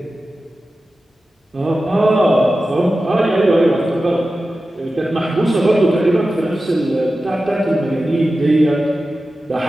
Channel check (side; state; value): both; normal; correlation 0.94